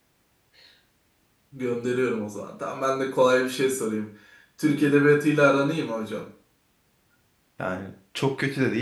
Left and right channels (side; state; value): both; identical; correlation 1.00